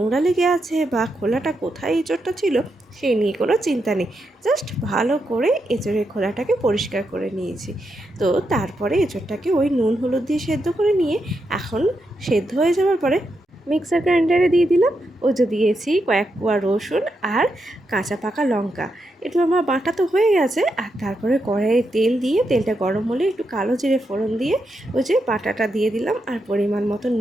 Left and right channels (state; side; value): normal; both; correlation 0.84